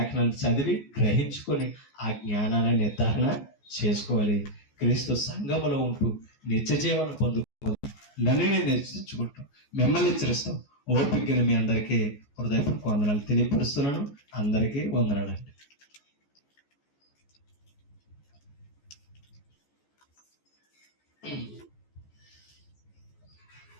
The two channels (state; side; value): late; right; 14 ms